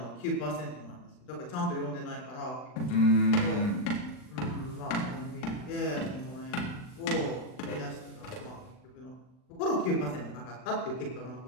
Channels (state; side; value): late; right; 39 ms